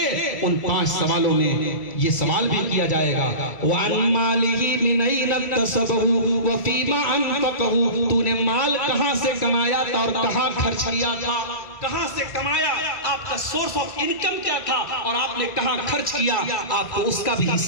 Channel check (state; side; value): late; right; 1.9 ms